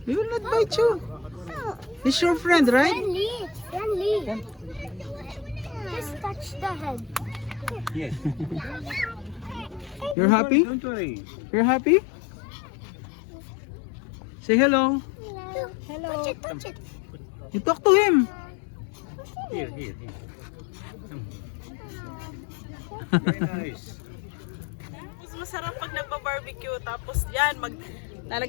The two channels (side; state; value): right; drops out; at 10.2 s